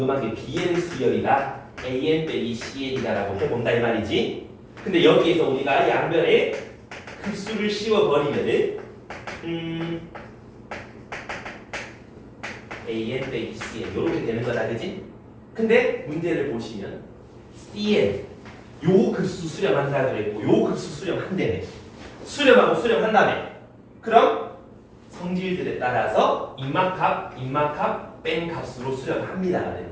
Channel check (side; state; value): both; identical; correlation 1.00